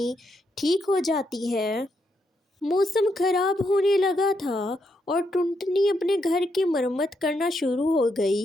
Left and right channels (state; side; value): normal; both; correlation 0.79